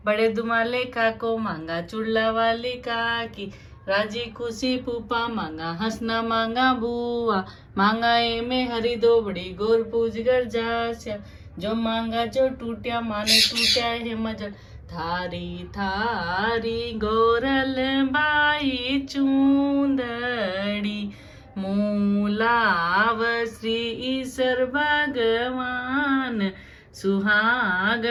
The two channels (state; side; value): identical; both; correlation 1.00